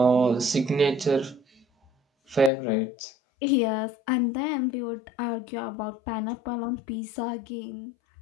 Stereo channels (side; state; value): right; drops out; at 2.5 s